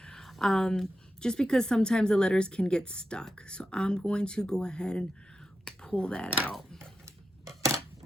just because sometimes the letters can get stuck. So I'm going to go ahead and pull that out.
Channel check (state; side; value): normal; both; correlation 0.89